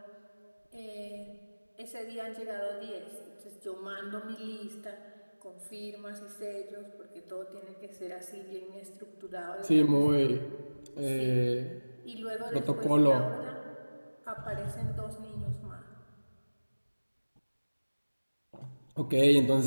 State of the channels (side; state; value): both; inverted; correlation -1.00